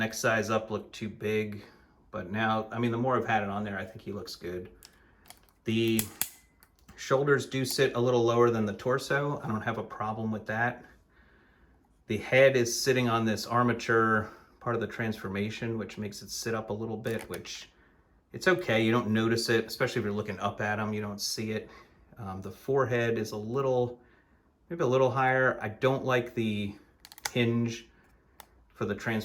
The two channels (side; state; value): both; identical; correlation 1.00